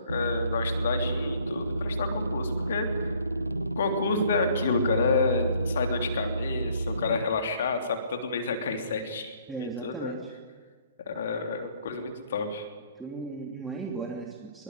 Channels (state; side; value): inverted; both; correlation -0.62